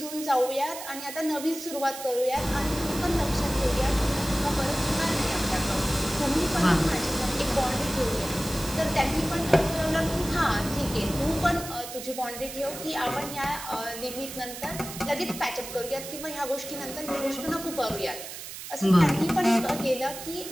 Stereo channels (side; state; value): right; noise; hiss, 10 dB below the sound